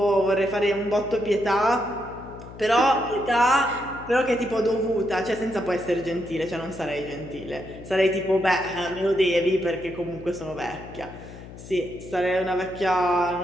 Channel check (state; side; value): noise; left; hum, 15 dB below the sound